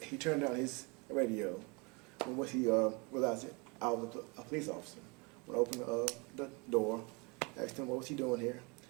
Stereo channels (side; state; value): left; quieter; 29.7 dB